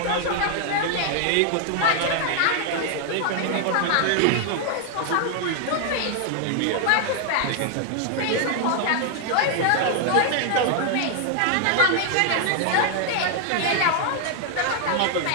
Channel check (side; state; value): both; different; correlation 0.00